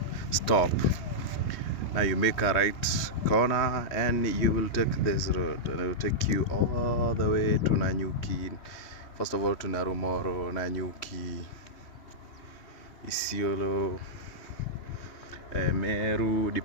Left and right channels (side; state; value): right; late; 3.1 ms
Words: stop. Now you make a right corner and you will take this road, and it will take you all the way to Nanyuki. First of all to Narumoro, Nanyuki, Isiolo, Meru,